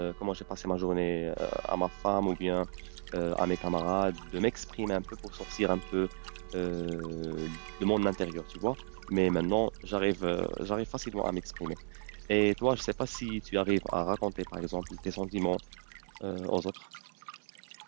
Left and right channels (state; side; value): silent; left; 55 dB below the other